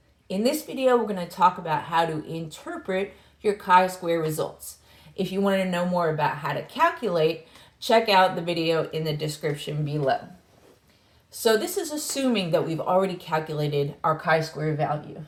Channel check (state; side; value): identical; both; correlation 1.00